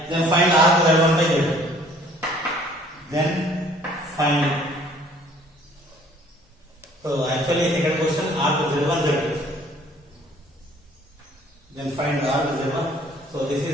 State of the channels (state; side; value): normal; both; correlation 0.56